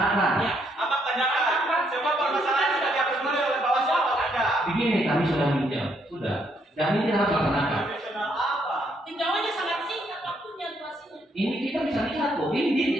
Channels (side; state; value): both; normal; correlation 0.72